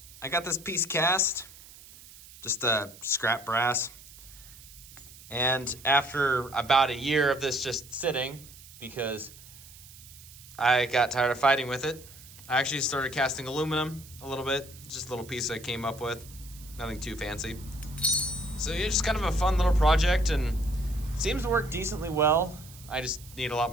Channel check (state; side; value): noise; right; hiss, 19 dB below the sound